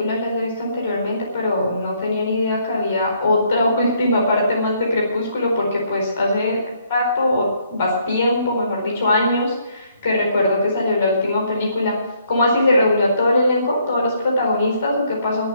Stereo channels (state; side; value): inverted; both; correlation -0.69